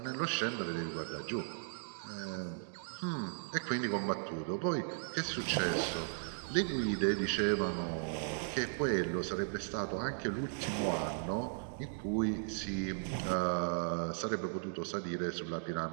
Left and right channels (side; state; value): left; silent; digital silence